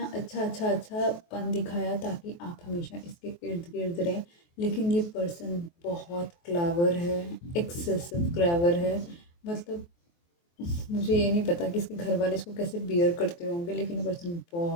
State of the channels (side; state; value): right; late; 23 ms